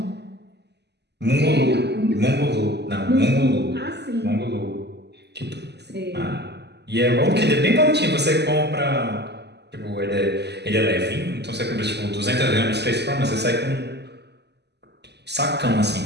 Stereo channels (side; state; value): left; late; 0.49 ms